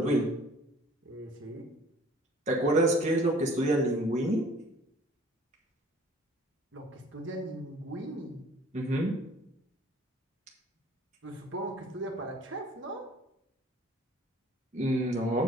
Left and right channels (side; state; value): both; normal; correlation 0.52